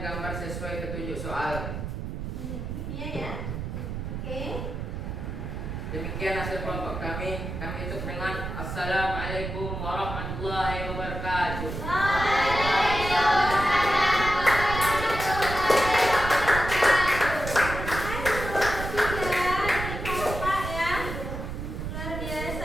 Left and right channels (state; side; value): noise; right; rumble, 6 dB below the sound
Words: gambar sesuai petunjuk soal. Ini ya. Oke. Demikian hasil kelompok kami. Kami tutup dengan Assalamualaikum warahmatullahi wabarakatuh.